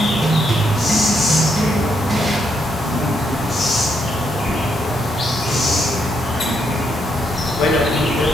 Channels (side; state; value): both; normal; correlation 0.77